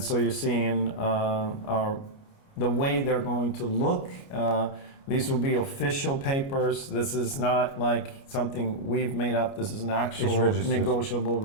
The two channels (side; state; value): right; late; 29 ms